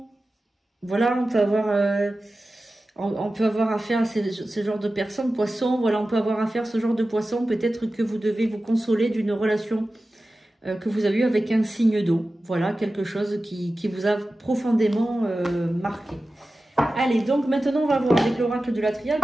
voilà, on peut avoir affaire à ce genre de personnes, poissons, voilà, on peut avoir affaire à ce genre de poissons. Peut-être que vous devez vous consoler d'une relation que vous avez eue avec un signe d'eau. Voilà, quelque chose qui vous a profondément marqué. Allez, donc maintenant on va voir avec l'oracle de la triade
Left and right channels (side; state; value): both; normal; correlation 0.95